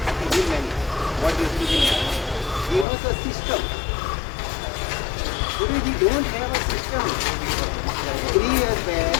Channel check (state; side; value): drops out; right; at 2.9 s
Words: Bill menu. What you see in there. Give us a system. Today we don't have a system. 3 years back,